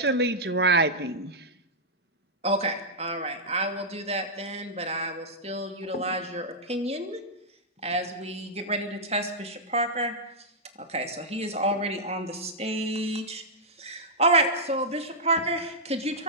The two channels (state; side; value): normal; both; correlation -0.10